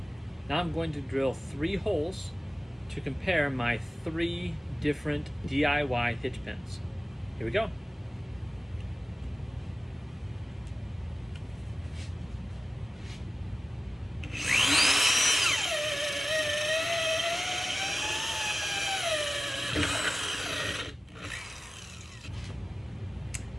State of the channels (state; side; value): normal; both; correlation 0.96